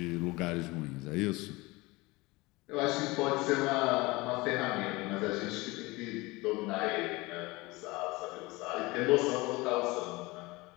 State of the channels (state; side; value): quieter; right; 22.7 dB